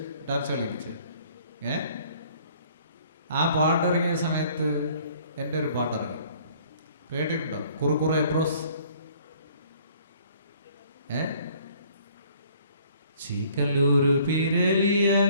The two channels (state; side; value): inverted; both; correlation -0.57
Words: ഡാൻസ് കളിപ്പിച്ചത്. ആ പാട്ടിറങ്ങിയ സമയത്ത് എൻ്റെ ഒരു പാട്ടിറങ്ങി, കേട്ടിട്ടുണ്ടോ? കുറുക്കുറെ എപ്രോസ്. ചീക്കല്ലൂര് പിരലിയ